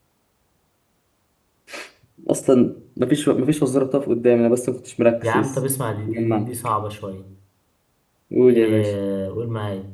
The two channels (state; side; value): identical; both; correlation 1.00